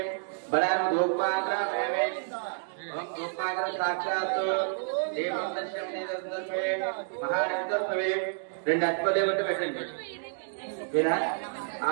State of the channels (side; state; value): left; silent; digital silence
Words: బలాం గోపాగ్రమే. ఓం గోపాగ్ర సాక్షాత్ దేవం దర్శనం నిదర్శనమే మహానిదర్శనమే. 2 అశ్వదేవత పెట్టండి. ఏనా